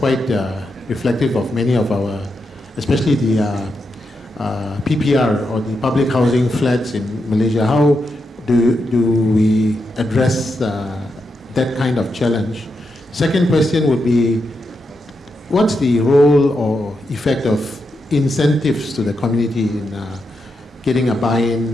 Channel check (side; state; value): both; normal; correlation 0.85